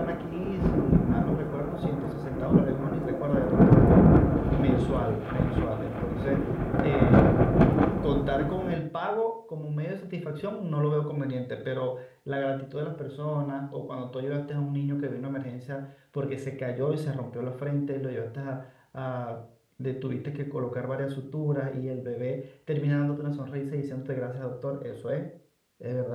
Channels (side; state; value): both; identical; correlation 1.00